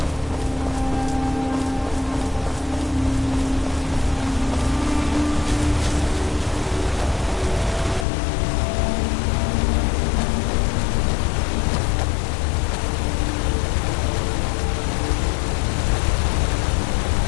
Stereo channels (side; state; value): right; drops out; at 8.1 s